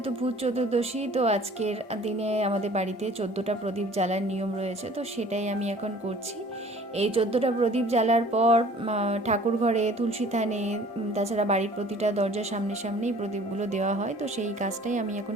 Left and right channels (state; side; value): normal; both; correlation 0.50